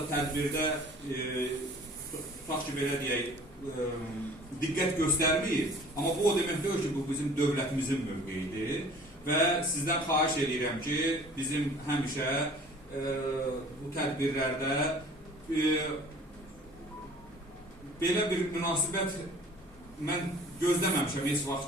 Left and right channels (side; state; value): both; normal; correlation 0.49